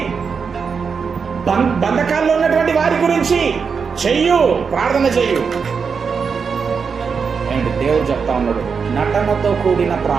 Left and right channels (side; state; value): left; quieter; 5.8 dB